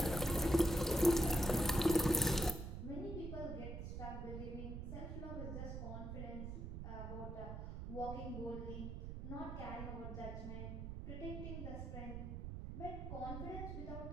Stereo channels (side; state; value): right; noise; rumble, 6 dB below the sound